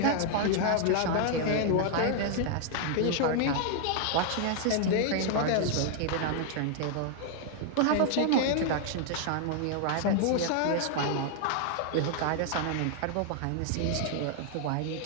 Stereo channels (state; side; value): different; both; correlation 0.00